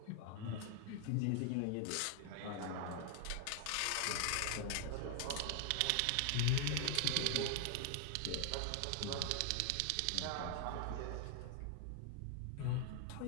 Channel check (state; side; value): different; both; correlation 0.00